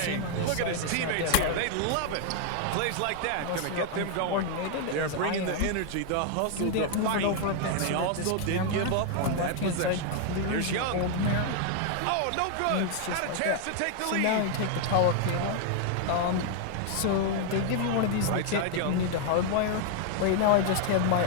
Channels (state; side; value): different; both; correlation 0.00